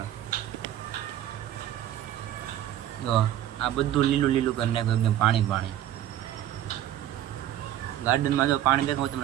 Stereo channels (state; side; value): quieter; left; 12.2 dB